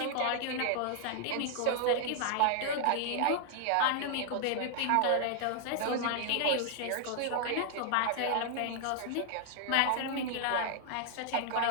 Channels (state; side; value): different; both; correlation 0.00